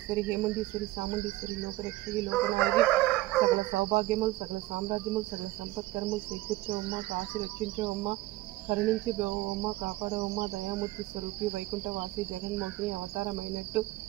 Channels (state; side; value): quieter; left; 18.0 dB